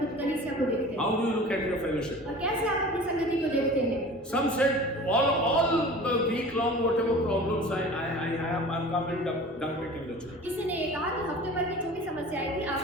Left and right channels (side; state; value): both; normal; correlation 0.40